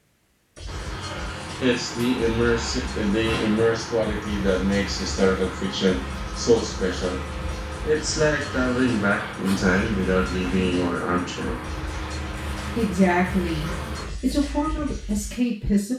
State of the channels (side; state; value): both; identical; correlation 1.00